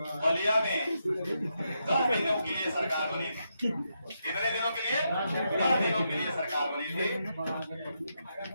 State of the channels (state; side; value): inverted; both; correlation -0.83